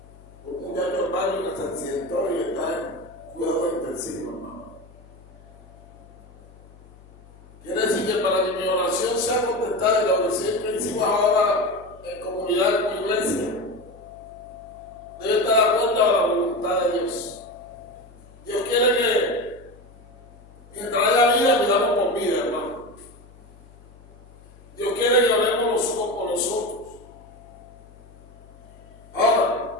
Un muchacho hermano que se accidentó y está en cuidado intensivo, hermano. Quiere decir que para que mi oración sea contestada y la oración que hicimos ahora en comunidad con iglesia, debe estar de acuerdo a la voluntad de Dios. Dios quiere que mientras haya vida, pidamos por vida, hermano. Dios quiere que oremos los unos por los otros. Ahora,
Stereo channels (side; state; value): left; noise; hum, 23 dB below the sound